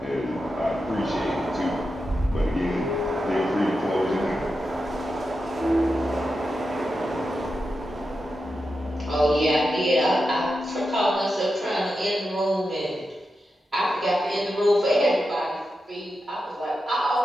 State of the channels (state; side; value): normal; both; correlation 0.89